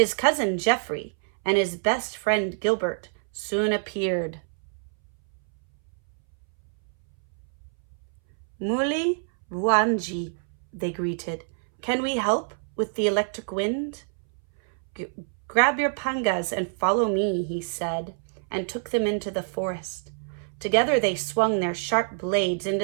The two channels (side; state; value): left; silent; 61 dB below the other